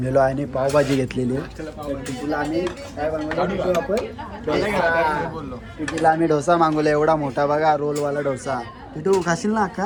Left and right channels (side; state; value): both; identical; correlation 1.00